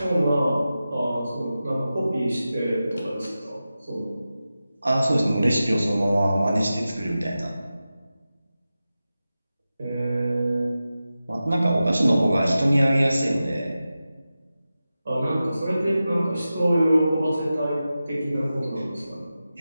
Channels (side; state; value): both; inverted; correlation -0.93